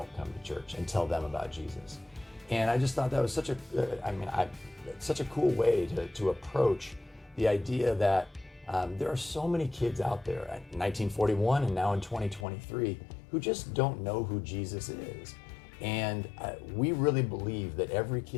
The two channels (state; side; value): drops out; right; at 12.5 s